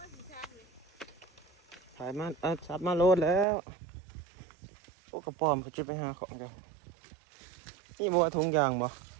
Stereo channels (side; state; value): left; drops out; at 3.5 s